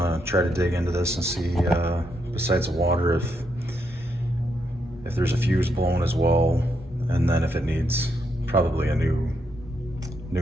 try to dig into this and see, besides the water, if there's a fuse blown as well, and then if it needs probably a new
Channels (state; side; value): normal; both; correlation 0.79